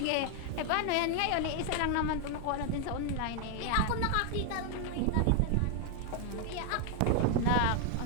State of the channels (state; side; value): different; both; correlation 0.01